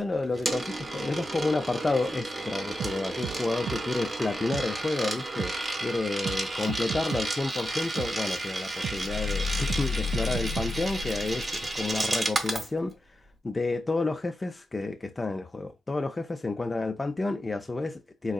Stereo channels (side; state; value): both; normal; correlation 0.90